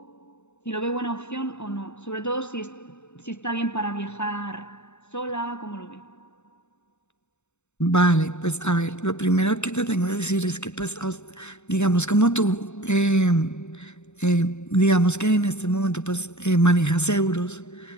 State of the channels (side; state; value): right; late; 0.82 ms